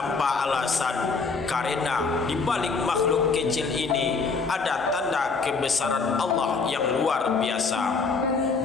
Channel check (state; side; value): quieter; right; 4.5 dB